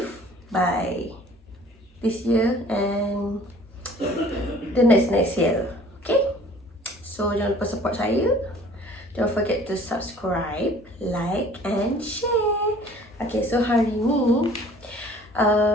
by this year and the next year. Okay? So, jangan lupa support saya. Don't forget to subscribe, like and share. Okay, so hari ni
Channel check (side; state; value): both; normal; correlation 0.51